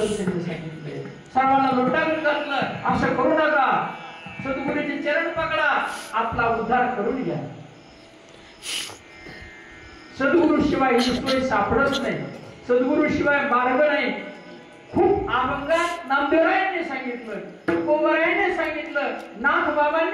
त्यांनी सांगितले, सर्वांना लुटावून घातलं, असं करू नका, सद्गुरूचे चरण पकडा, आपला उद्धार करून घ्या. सद्गुरु शिवाय ईश्वर सापडत नाही, सद्गुरु शिवाय मार्ग नाही. खूप अभंगात नामदेवरायांनी सांगितलं, तुकोबरायांनी सांगितलं, नाथ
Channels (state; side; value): identical; both; correlation 1.00